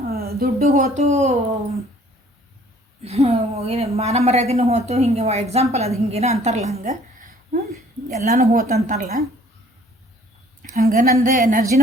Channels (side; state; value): both; normal; correlation 0.56